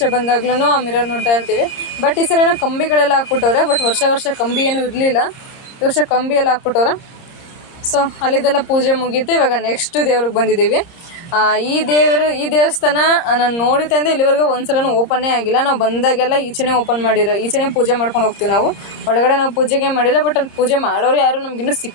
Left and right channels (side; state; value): right; late; 30 ms